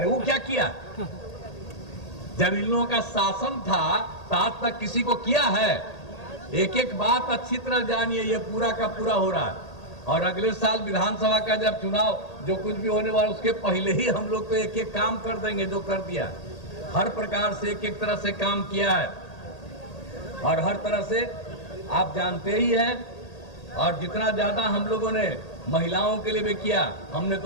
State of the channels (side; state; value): right; late; 1.8 ms